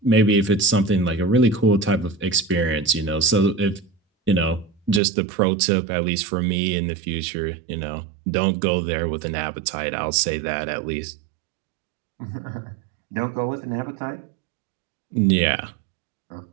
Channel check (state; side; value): drops out; left; at 5.0 s